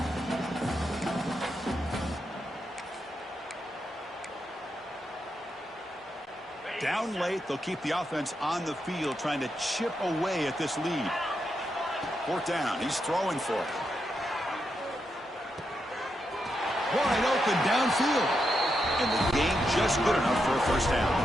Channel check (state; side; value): normal; both; correlation 0.84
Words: Down late, they'll keep the offense on the field, trying to chip away at this lead. Fourth down, he's throwing for it. Wide open downfield. And the game just good enough for a first down.